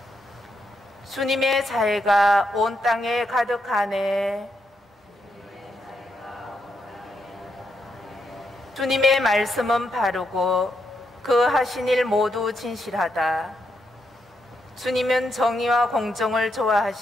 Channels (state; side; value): normal; both; correlation 0.81